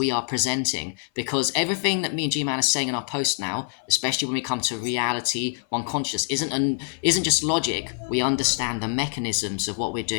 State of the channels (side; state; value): right; silent; 57 dB below the other